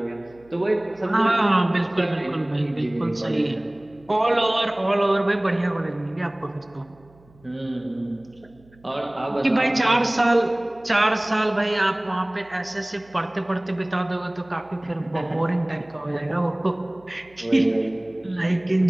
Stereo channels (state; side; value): noise; right; hum, 28 dB below the sound